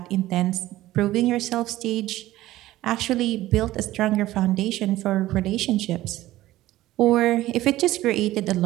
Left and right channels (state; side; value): quieter; left; 15.8 dB